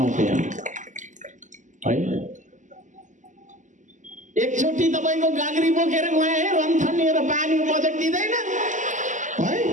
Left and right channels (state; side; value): late; left; 0.36 ms